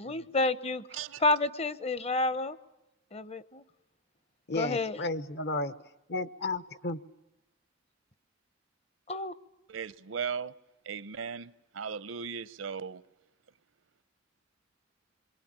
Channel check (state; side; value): normal; both; correlation -0.10